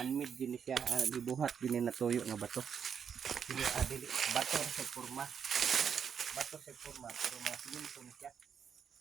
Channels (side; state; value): left; quieter; 7.4 dB